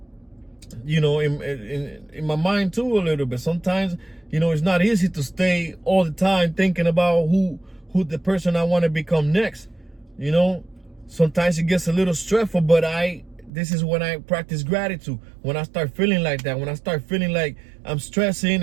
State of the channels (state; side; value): drops out; left; at 13.5 s